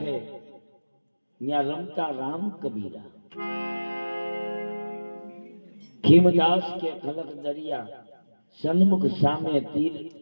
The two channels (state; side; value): inverted; both; correlation -1.00